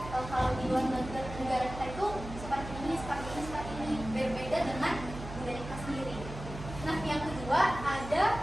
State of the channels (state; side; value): noise; right; hum, 10 dB below the sound